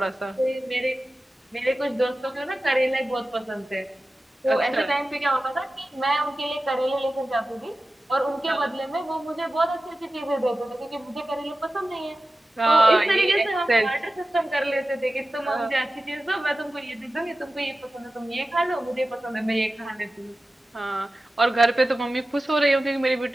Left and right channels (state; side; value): normal; both; correlation 0.94